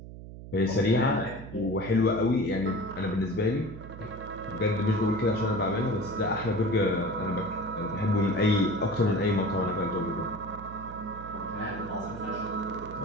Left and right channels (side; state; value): right; noise; hum, 13 dB below the sound